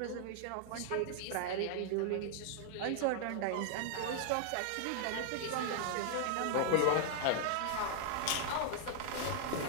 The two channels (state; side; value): different; both; correlation 0.00